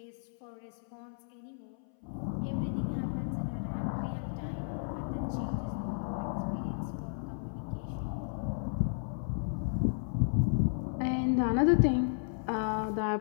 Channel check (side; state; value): right; silent; 55 dB below the other